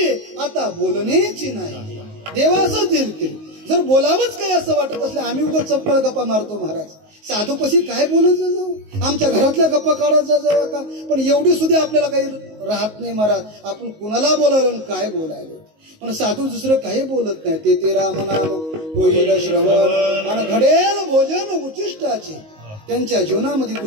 आता बोलण्याची नाही. देवा असंच येईल. जर बोलावंच काय असं वाटत असलं, आम्ही उगाच चपळ गप्पा मारतो महाराज. साधूपाशी काय बोलत जाऊ, आमच्या घरातल्या गप्पा काढत जाऊ का. पण एवढी सुद्धा आपल्याला काही राहत नाही महाराज. आपण कुणाला बोलायलो काय बोलायलो, पण साधू दुसरं काही बोलत नाही. ते रामनाम होईल श्रवण आणि घडेल भोजन उचिष्टाचे. त्यांच्या जीवनामध्ये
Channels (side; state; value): left; late; 19 ms